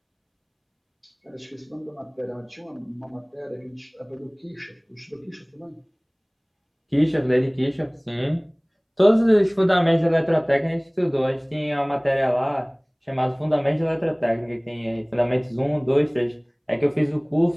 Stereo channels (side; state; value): both; identical; correlation 1.00